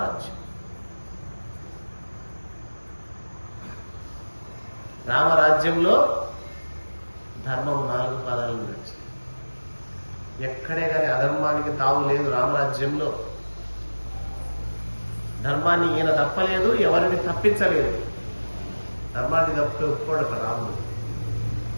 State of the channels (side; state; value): both; inverted; correlation -1.00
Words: రామరాజ్యంలో ధర్మం 4 పాదాలు నడిచింది. ఎక్కడే కానీ అధర్మానికి తావు లేదు రామరాజ్యంలో. ధర్మాన్ని ఈయన తప్పలేదు, ఎవరిని తప్పించలేదు. ధర్మాన్ని తప్పితే ఒప్పుకోడు రాముడు.